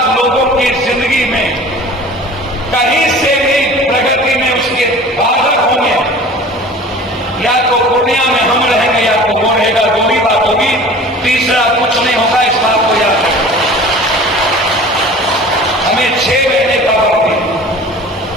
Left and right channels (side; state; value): both; normal; correlation 0.42